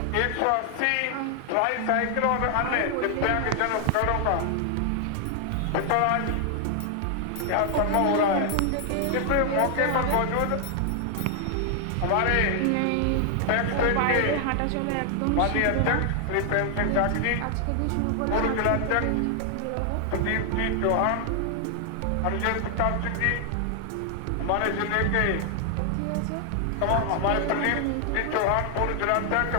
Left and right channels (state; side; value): different; both; correlation 0.00